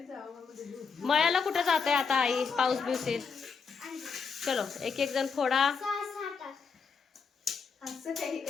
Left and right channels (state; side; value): quieter; right; 5.5 dB